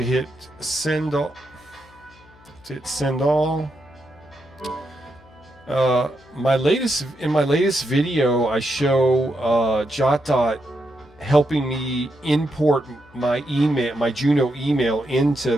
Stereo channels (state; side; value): noise; left; hum, 26 dB below the sound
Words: hit send all. Hit send all. In my latest video, I show JotDot helping me import my email, my Juno email, into